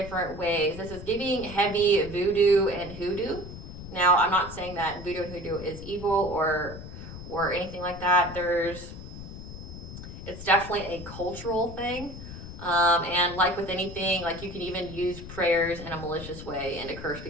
ways. This is giving heavy voodoo and hoodoo. Now, I'm not saying that voodoo and hoodoo is evil or anything like that. It's definitely a cultural thing. And like with anything, like you can even use prayers in a malicious way and to curse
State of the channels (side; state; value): left; noise; rumble, 12 dB below the sound